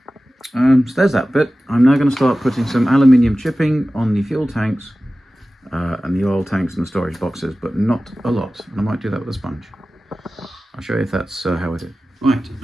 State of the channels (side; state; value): both; normal; correlation 0.96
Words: So there's that bit. I'm now going to start putting some aluminium chipping on the fuel tanks and the oil tanks and the storage boxes, but not a lot. And I might do that with a sponge. I'll show you if that's how I do. Right,